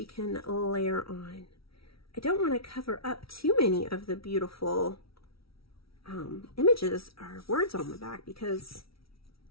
can layer on. I don't want to cover up too many of the beautiful images or words on the back because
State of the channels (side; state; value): right; late; 0.75 ms